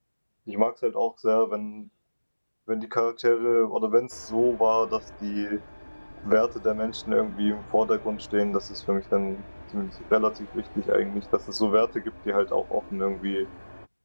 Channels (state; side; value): inverted; both; correlation -1.00